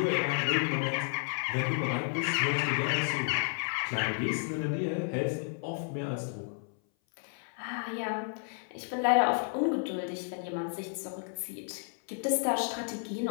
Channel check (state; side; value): silent; right; 57 dB below the other